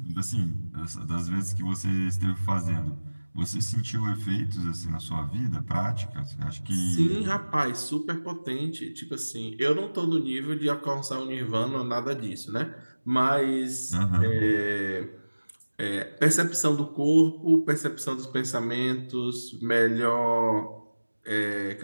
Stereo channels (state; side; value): inverted; both; correlation -1.00